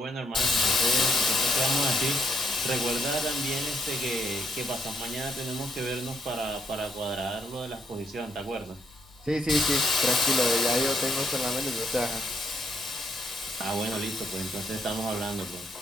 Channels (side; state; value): both; normal; correlation 0.74